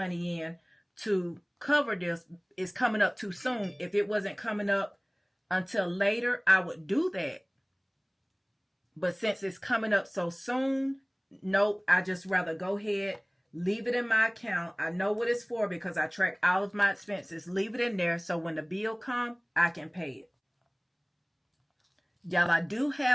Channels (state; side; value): identical; both; correlation 1.00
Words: in to cover this. It's coming up too soon. If it wasn't coming up until later, I would do that. But since it's coming up so soon, nope, I just rather go ahead, leave it in my account. I know what it's for because I track all of my expenses. Leave it in there so when the bill comes, I can pay it. Y'all, I do